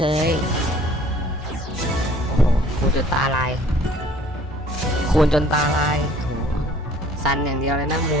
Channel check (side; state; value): both; normal; correlation 0.54